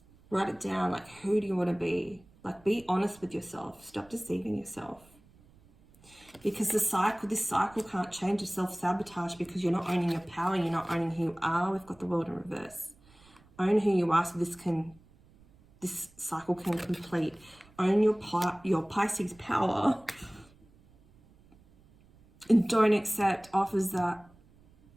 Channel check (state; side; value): noise; right; rumble, 28 dB below the sound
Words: Write it down, like, who do you want to be? Like, be honest with yourself. Stop deceiving yourself. Because this cycle can't change. It's self-sabotage because you're not owning your power. You're not owning who you are. We've got the world in reverse. Own who you are so this cycle can complete. Own your Pisces power. And don't accept offers that